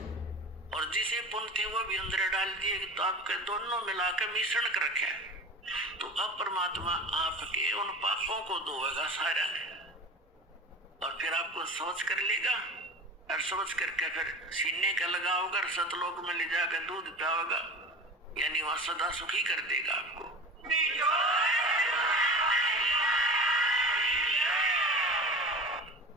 और जिसे पुण्य थे वो भी अंदर डाल दिए, तो आपके दोनों मिलाकर मिश्रण कर रखे। तो अब परमात्मा आपके उन पापों को धोएगा सारा ने, और फिर आपको सोच कर लेगा, और सोच करके फिर सीने का लगाओगा और सतलोक में ले जाकर दूध पियाओगा, यानी वह सदा सुखी कर देगा आपको।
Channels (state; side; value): normal; both; correlation 0.34